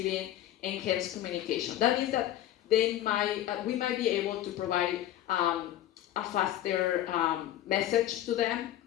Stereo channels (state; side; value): quieter; right; 12.8 dB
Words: enhanced communication. That means that we might be able to provide a faster message to them,